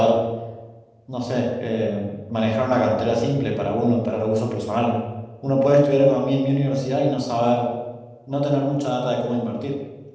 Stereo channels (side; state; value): both; identical; correlation 1.00